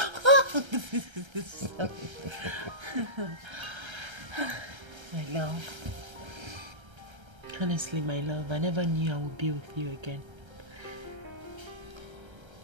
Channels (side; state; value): left; late; 1.3 ms